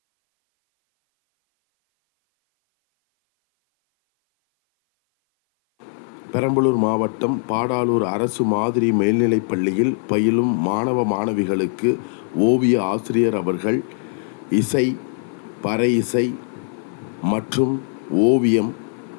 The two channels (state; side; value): silent; right; 57 dB below the other